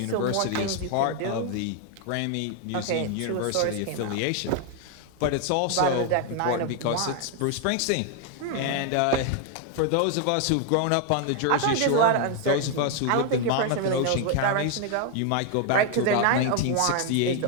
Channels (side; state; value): both; different; correlation 0.00